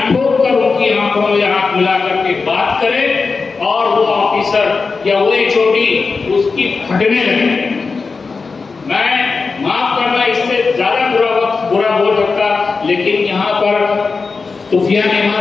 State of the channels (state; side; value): quieter; right; 4.5 dB